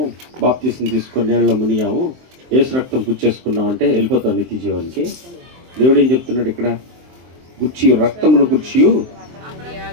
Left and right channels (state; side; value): late; left; 23 ms